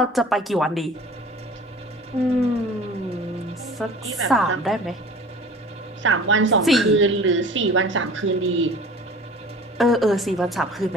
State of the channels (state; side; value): normal; both; correlation 0.43